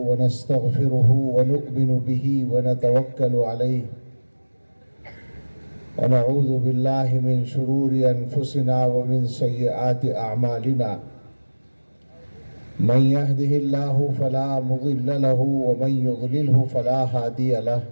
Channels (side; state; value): both; inverted; correlation -1.00